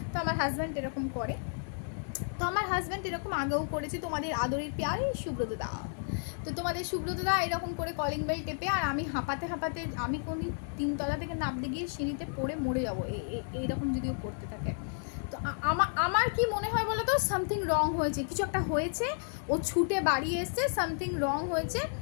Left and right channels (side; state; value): right; silent; 56 dB below the other